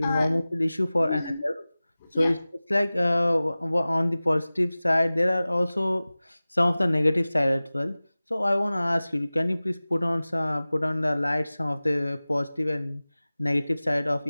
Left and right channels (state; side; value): inverted; both; correlation -0.98